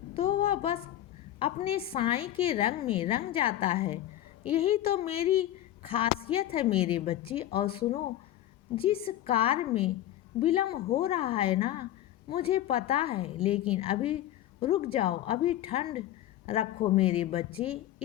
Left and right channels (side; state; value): right; quieter; 12.9 dB